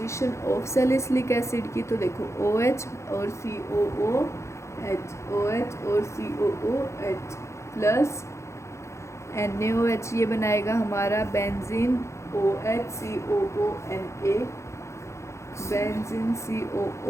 ऑफ सैलिसिलिक एसिड की, तो देखो OH और COOH, OH और COOH प्लस NaOH, ये बनाएगा हमारा benzene OHCOONA, benzene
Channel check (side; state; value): right; late; 0.14 ms